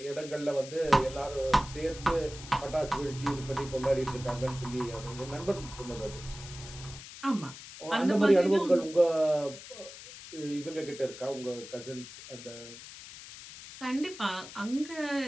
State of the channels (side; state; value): left; noise; hiss, 14 dB below the sound